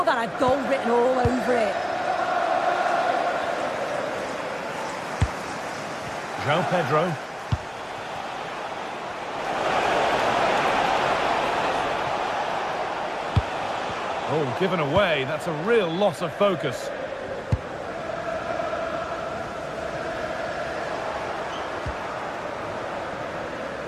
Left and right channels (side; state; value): both; identical; correlation 1.00